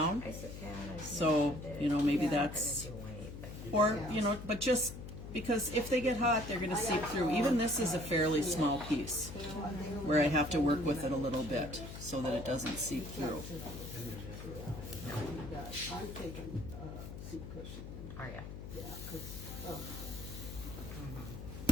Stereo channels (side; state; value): left; noise; hum, 10 dB below the sound